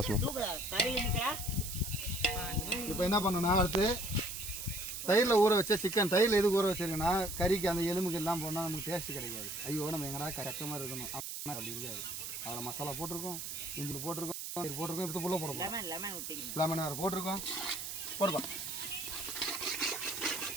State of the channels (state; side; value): noise; right; hiss, 6 dB below the sound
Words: இப்போ என்ன பண்ணணும்னா அடுத்து தயிரில் ஊற வச்ச சிக்கன். தயிரில் எதுக்கு ஊற வச்சிருக்கேன்னா கறிக்கு அந்த எலும்புக்கு எல்லாம் போனால் நமக்கு டேஸ்ட் கிடைக்காது. ஐயோ நம்ம எங்கடா கரெக்டாக மாதிரி இருக்கணும் அப்படி இருக்காது. அதில் மசாலா போட்டிருக்கோம், இஞ்சி போட்டிருக்கோம், போட்டிருக்கோம், இப்போ புள்ள போட போகிறோம். லெமன் வேறு போட்டிருக்கோம். போடுப்பா.